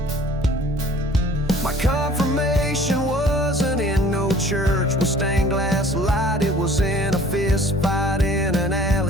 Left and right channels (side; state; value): both; normal; correlation 0.52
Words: My confirmation wasn't in no church with stained glass light. It was in a fist fight in an